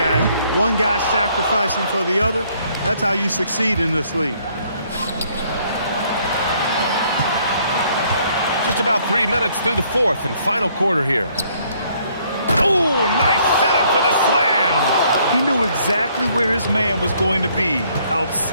One guy sacrificing for the other. That's how you succeed in this league. Just about 3 minutes through the fourth and final quarter here. Oh, nice setup for the slam. He knew exactly where his man was going to be.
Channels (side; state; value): both; inverted; correlation -0.66